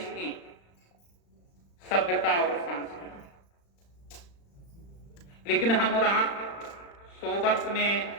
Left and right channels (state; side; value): late; right; 35 ms